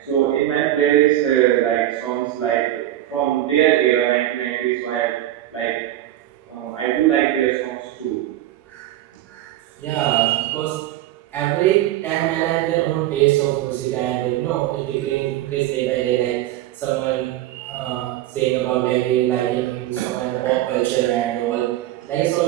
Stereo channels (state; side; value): quieter; left; 13.7 dB